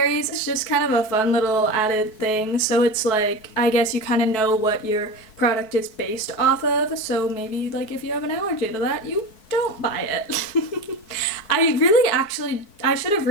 It's just kind of a fun little added thing. So it's like, I guess you kind of know what your product is based off of. So maybe like if you have an allergy to that, you don't buy it. I should have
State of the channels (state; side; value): late; right; 4.7 ms